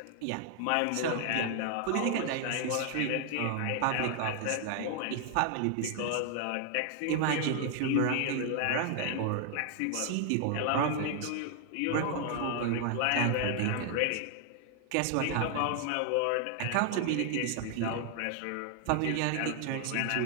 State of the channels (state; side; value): different; both; correlation 0.00